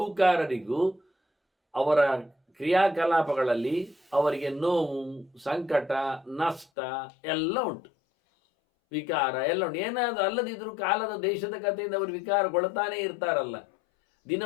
ಅವರ ಕ್ರಿಯಾಕಲಾಪಗಳಲ್ಲಿ ಅವರಿಗೆ ನೋವು, ಸಂಕಟ, ನಷ್ಟ ಎಲ್ಲ ಉಂಟು, ವಿಕಾರ ಎಲ್ಲ ಉಂಟು. ಏನಾದರೂ ಅಲ್ಲದಿದ್ದರೂ ಕಾಲದ ದೇಶದ ಕಥೆಯಿಂದ ಅವರು ವಿಕಾರಗೊಳ್ತಾನೇ ಇರ್ತಾರಲ್ಲ. ದಿನ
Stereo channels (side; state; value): right; drops out; at 6.7 s